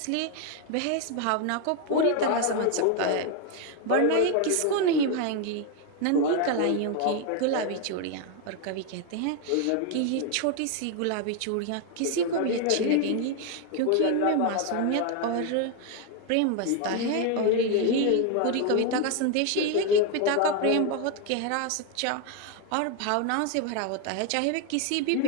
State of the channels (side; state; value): both; different; correlation 0.01